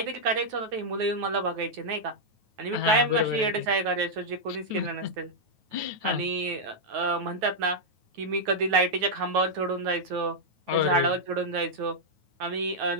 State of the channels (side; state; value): left; late; 9.3 ms